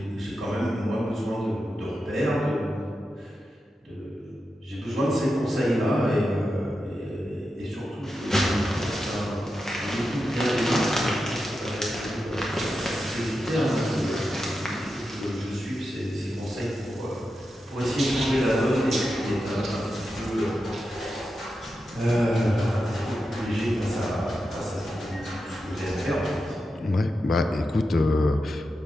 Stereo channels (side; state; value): both; normal; correlation 0.89